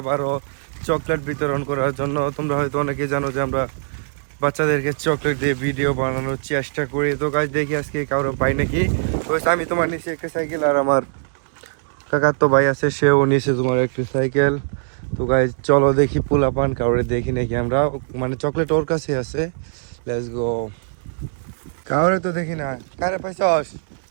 চকলেট বিতরণ করার জন্য। তোমরা হয়তো অনেকেই জানো যে আমরা বাচ্চাদেরকে চকলেট দিয়ে ভিডিও বানানোর চেষ্টা করি। তো গাইস, দেখি আজকে কারো পাই নাকি। তো আমি তোমার নিচে একটা সাইকেল, আর আমার কাকার তো ভাই আছে, সেও নিচে তোমার একটা সাইকেল। তো গাইস চলো দেখি পোলাপান কাউরে দেখি নাকি আমরা, মানে চকলেট ওর কাছে আছে। Let's go. কাউরে তো দেখি না। কারে পাইছস?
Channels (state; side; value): silent; left; digital silence